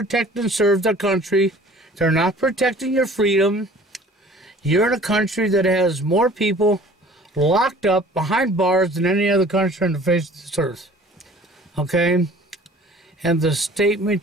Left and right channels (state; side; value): normal; both; correlation 0.49